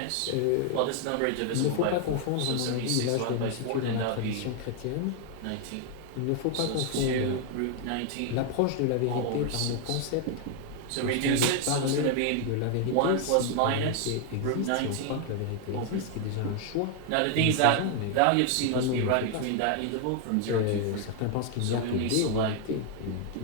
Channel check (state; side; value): different; both; correlation 0.00